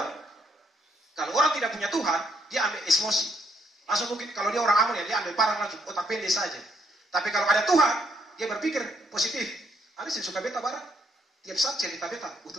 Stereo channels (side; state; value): both; normal; correlation 0.71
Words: Kalau orang tidak punya Tuhan, dia ambil emosi. Langsung mungkin kalau dia orang Amun ya, dia ambil parang langsung, otak pendek saja. Tapi kalau ada Tuhan, dia berpikir positif. Ada sih suka beta barang, tiap saat cerita beta, butuh